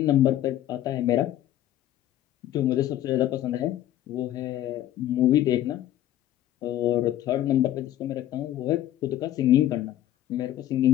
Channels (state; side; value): quieter; right; 12.8 dB